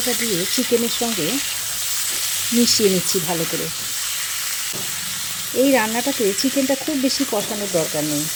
দিয়ে চিকেনের সঙ্গে মিশিয়ে নিচ্ছি ভালো করে। এই রান্নাটাতে চিকেনটা খুব বেশি কষানোর দরকার নেই,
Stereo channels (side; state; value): both; identical; correlation 1.00